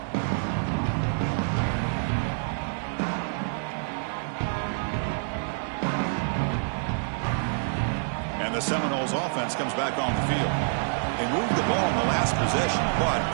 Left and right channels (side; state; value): left; silent; digital silence